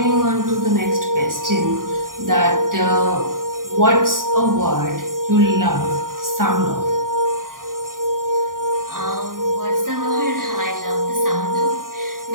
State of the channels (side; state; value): left; late; 0.90 ms